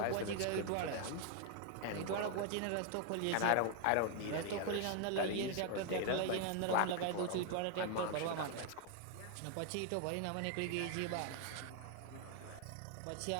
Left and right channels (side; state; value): both; different; correlation 0.01